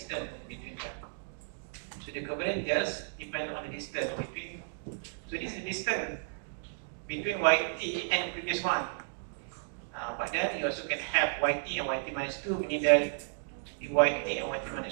between them. So the covariance just depends on the distance between. So this is the distance between YT and the previous one. But then you also can have YT and YT minus 2, meaning that the YT and YT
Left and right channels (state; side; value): silent; left; digital silence